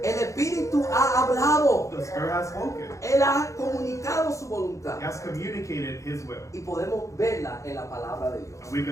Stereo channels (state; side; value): late; right; 0.15 ms